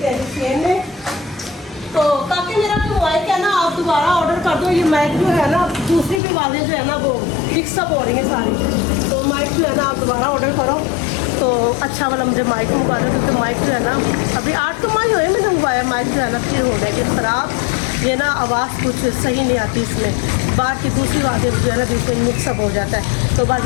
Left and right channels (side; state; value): right; drops out; at 6.2 s